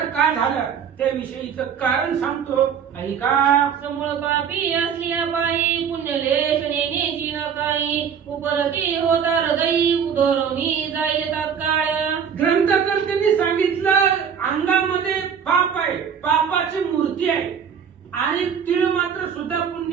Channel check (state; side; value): quieter; left; 7.4 dB